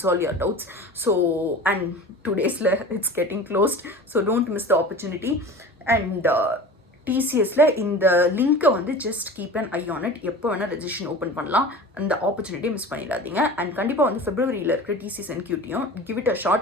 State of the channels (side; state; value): both; normal; correlation 0.36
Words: your doubts. So and 2 days it's getting closed. So don't miss the opportunity. And டிசிஎஸ்ல இந்த லிங்க்கை வந்து just keep an eye on it. எப்போ வேணால் ரெஜிஸ்ட்ரேஷன் ஓப்பன் பண்ணலாம். அந்த ஆப்பர்ச்சுனிட்டியை மிஸ் பண்ணிடாதீங்க. அண்ட் கண்டிப்பாக வந்து ஃபெப்ரவரியில் இருக்கிற டிசிஎஸ் என்கியூட்டியும் give it a